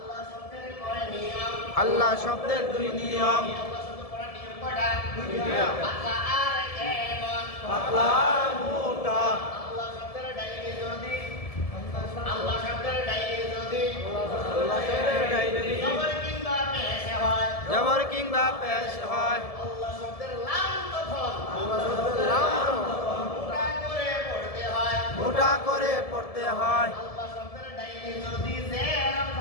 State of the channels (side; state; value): right; late; 1.7 ms